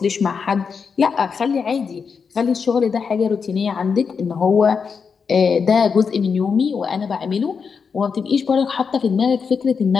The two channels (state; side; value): quieter; right; 5.8 dB